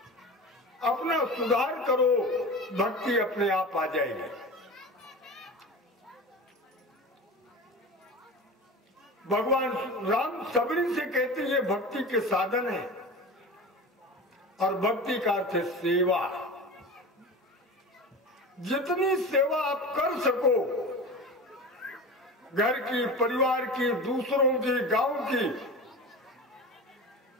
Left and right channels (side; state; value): both; normal; correlation 0.31